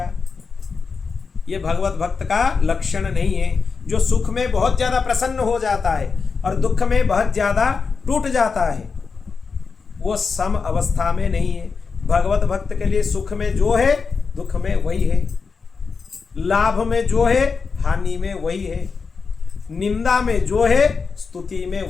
यह भगवत भक्त का लक्षण नहीं है, जो सुख में बहुत ज्यादा प्रसन्न हो जाता है और दुख में बहुत ज्यादा टूट जाता है, वो सम अवस्था में नहीं है। भगवत भक्त के लिए सुख में जो है दुख में वही है, लाभ में जो है हानि में वही है, निंदा में जो है स्तुति में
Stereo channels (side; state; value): right; quieter; 5.0 dB